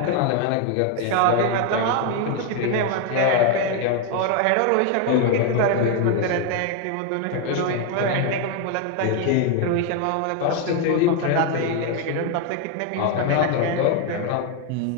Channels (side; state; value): both; different; correlation 0.01